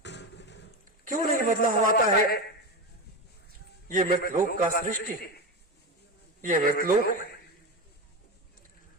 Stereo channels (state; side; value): normal; both; correlation 0.19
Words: क्यों नहीं बदलाव आता है? ये मृतलोक का सृष्टि है, ये मृतलोक है।